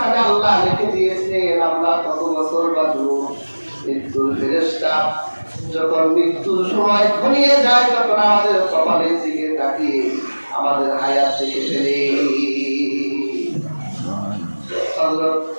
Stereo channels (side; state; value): both; inverted; correlation -1.00